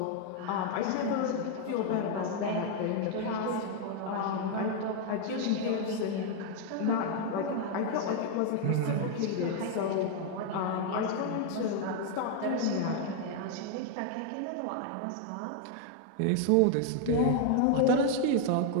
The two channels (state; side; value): different; both; correlation 0.00